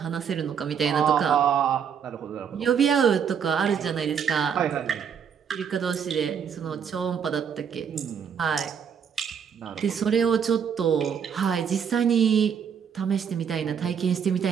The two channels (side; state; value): left; quieter; 7.4 dB